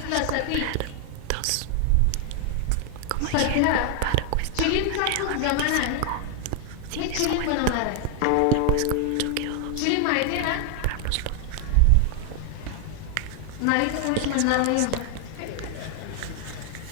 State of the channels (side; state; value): both; different; correlation 0.00